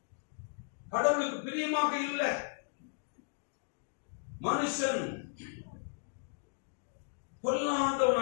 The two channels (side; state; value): right; silent; digital silence